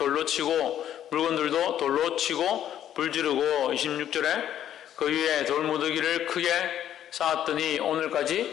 치고 물건들도 돌로 치고 불지르고 26절에 그 위에 돌무더기를 크게 쌓았더니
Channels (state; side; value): quieter; right; 10.8 dB